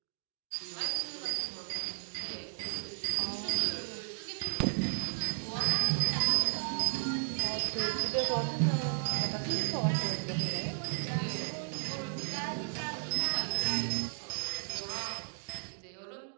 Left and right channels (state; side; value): silent; left; 55 dB below the other